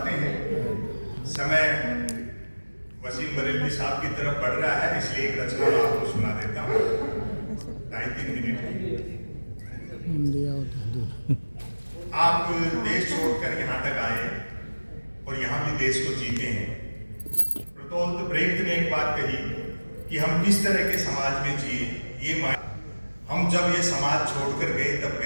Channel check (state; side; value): inverted; both; correlation -1.00